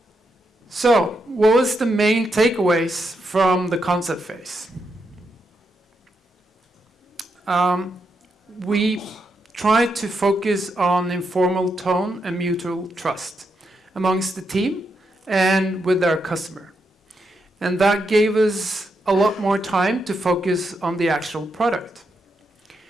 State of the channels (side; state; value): both; normal; correlation 0.82